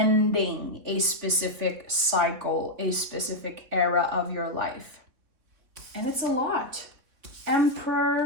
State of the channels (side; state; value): left; late; 3.4 ms